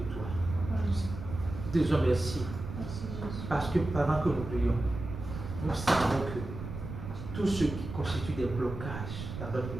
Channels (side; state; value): right; noise; rumble, 8 dB below the sound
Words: toi. Nous te disons merci. Parce que pendant que nous prions, nous savons que tout ce qui constitue des blocages dans notre